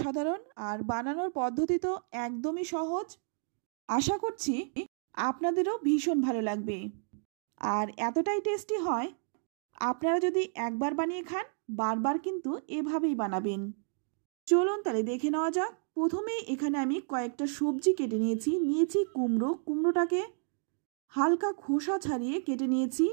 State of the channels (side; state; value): left; silent; 57 dB below the other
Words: আর বানানোর পদ্ধতি তো একদমই সহজ। আশা করছি আপনাদেরও ভীষণ ভালো লাগবে, আর এতটাই টেস্টি হয়, আপনারা যদি একবার বানিয়ে খান বারবার কিন্তু এভাবেই বানাবেন। চলুন তাহলে দেখে নেওয়া যাক। প্রথমে এখানে আমি কয়েকটা সবজি কেটে নিয়েছি কুমড়োটাকে হালকা খোসা ছাড়িয়ে কেটে নিয়েছি